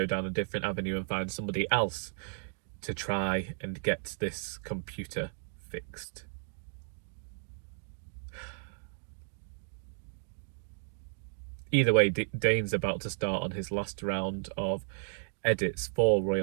down a different avenue and find somebody else to try and get this computer fixed. Either way, Dane's about to start on his last round of edits for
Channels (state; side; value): silent; left; digital silence